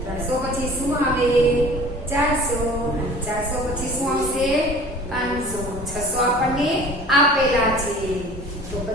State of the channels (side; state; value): both; normal; correlation 0.44